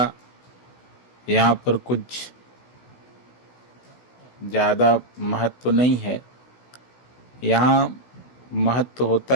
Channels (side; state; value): right; late; 16 ms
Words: यहाँ पर कुछ ज़्यादा महत्व नहीं है। यहाँ महत्व